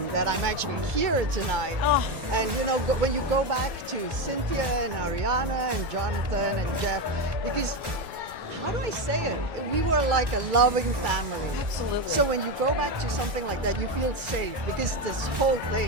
that I'm actually here tonight. Oh. And you know, when you go back to Cynthia and Ariana and Jonathan and Jeff, because how do I say it? We were like a loving family. Absolutely. So when you go back to something like that, you feel safe, because this whole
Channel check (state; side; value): late; left; 1.1 ms